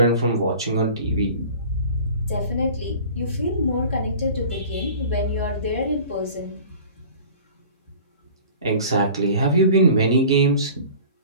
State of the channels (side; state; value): both; inverted; correlation -0.44